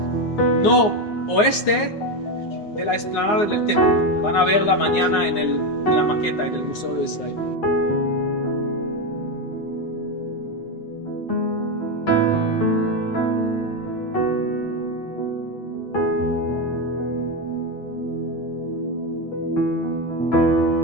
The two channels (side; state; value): right; late; 9.6 ms